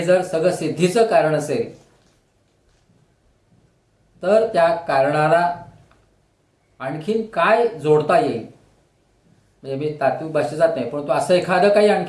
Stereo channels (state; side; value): identical; both; correlation 1.00